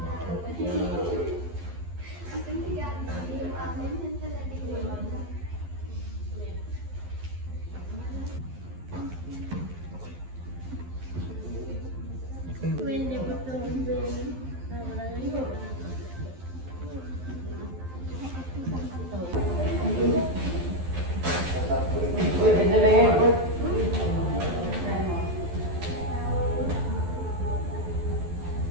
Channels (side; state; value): left; late; 11 ms